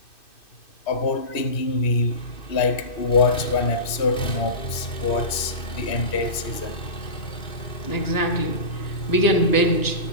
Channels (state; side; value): late; right; 2.6 ms